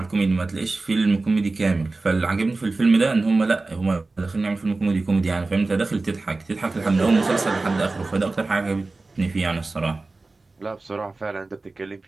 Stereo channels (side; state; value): left; quieter; 3.4 dB